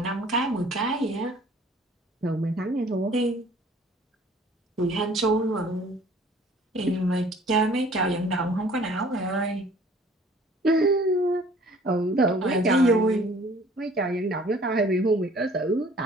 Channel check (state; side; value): normal; both; correlation 0.53